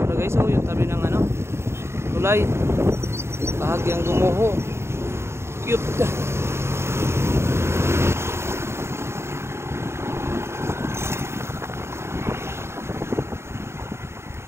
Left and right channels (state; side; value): late; left; 0.13 ms